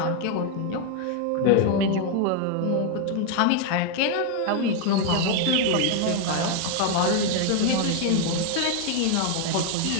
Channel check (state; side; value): different; both; correlation 0.01